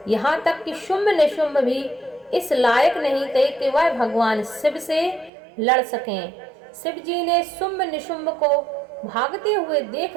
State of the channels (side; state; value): left; drops out; at 5.3 s